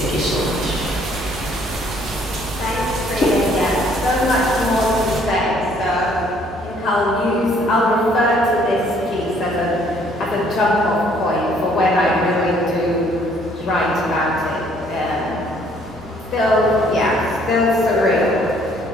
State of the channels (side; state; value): both; normal; correlation 0.62